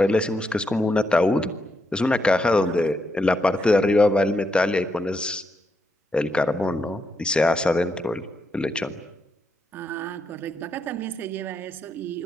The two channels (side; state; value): both; normal; correlation 0.81